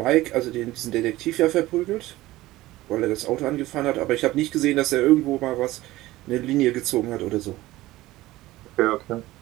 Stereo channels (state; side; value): quieter; left; 17.4 dB